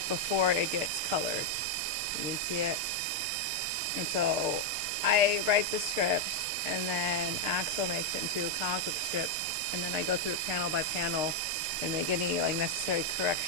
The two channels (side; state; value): left; late; 6.7 ms